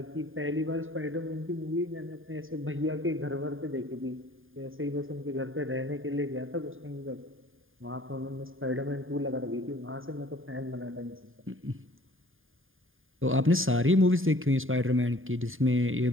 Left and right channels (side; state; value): left; late; 0.59 ms